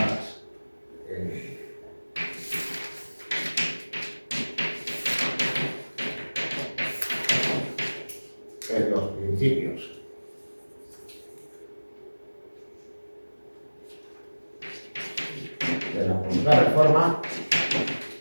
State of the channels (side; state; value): both; inverted; correlation -1.00